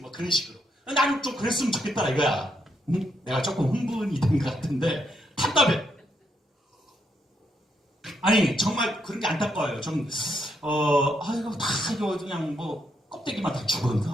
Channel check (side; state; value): both; normal; correlation 0.77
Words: 그런 식으로. 나는 좀 그랬으면 좋겠다 이거야. 내가 조금 흥분이 된 것 같은데 답답해. 정말 그런 게 안타까워요. 이거 그냥 껍데기만 다